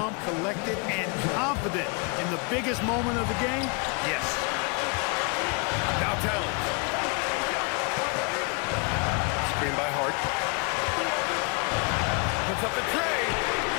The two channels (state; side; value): quieter; right; 33.0 dB